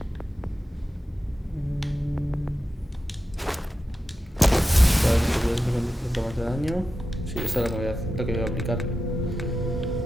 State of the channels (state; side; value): normal; both; correlation 0.91